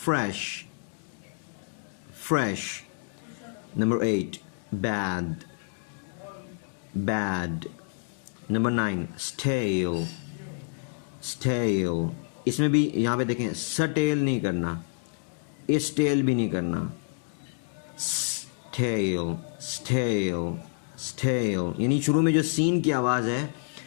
fresh, fresh, number 8 bad, bad, number 9 stale, stale। इसमें भी यहाँ पे देखें स्टेल नहीं करना, स्टेल भी नहीं करना, स्टेल, स्टेल, स्टेल, यानी शुरू में जो सीन की आवाज़ है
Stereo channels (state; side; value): silent; right; digital silence